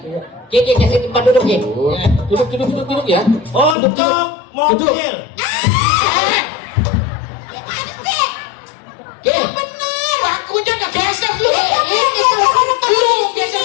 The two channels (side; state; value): right; drops out; at 3.8 s